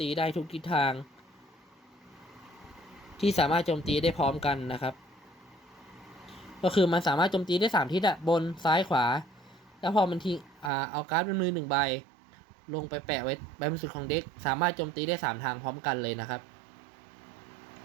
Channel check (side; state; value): left; drops out; at 10.7 s